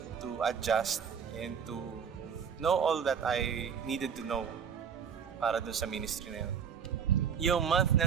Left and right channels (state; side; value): quieter; left; 7.2 dB